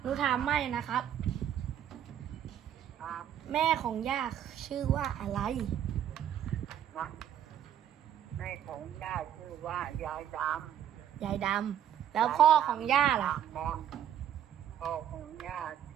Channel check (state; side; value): quieter; left; 10.1 dB